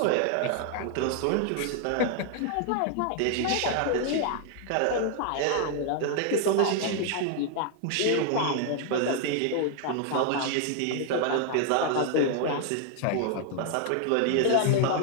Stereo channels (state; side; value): different; both; correlation 0.00